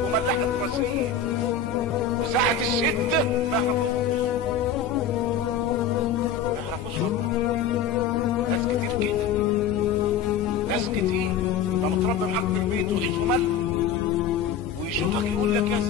وملحة رصيد، وساعة الشدة ما يعرفوش والله. ناس كتير كده، ناس كتير. انت متربي معاك في البيت وعيش وملح، ويشوفك يقول لك يا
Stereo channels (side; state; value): right; quieter; 6.5 dB